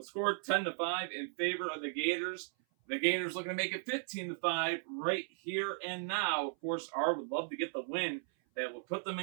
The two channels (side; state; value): left; silent; 54 dB below the other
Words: score 10-5 in favor of the Gators. The Gators looking to make it 15-5 right here and now. Of course, R would love to get the win. that will put them